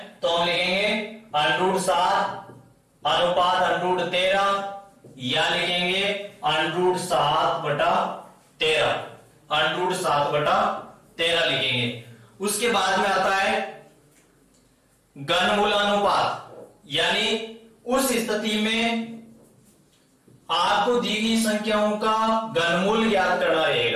तो हम लिखेंगे √7 अनुपात √13, या लिखेंगे √7/13 √7/13 लिखेंगे। उसके बाद में आता है घनमूलानुपात, यानी उस स्थिति में आपको दी गई संख्याओं का घनमूल ज्ञात करना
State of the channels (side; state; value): both; identical; correlation 1.00